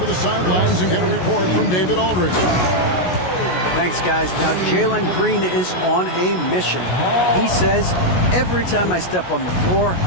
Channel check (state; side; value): late; right; 16 ms